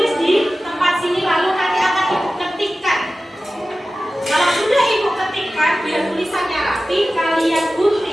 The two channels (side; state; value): both; normal; correlation 0.95